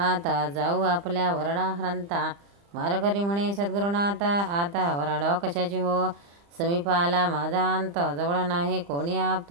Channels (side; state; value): left; late; 35 ms